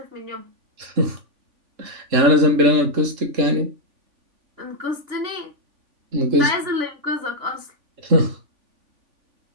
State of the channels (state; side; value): late; left; 3.5 ms